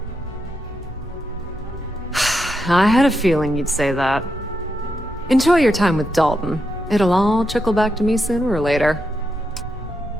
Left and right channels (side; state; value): both; normal; correlation 0.84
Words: I had a feeling you'd say that. Enjoy your time with Dalton. It'll all trickle back to me sooner or later.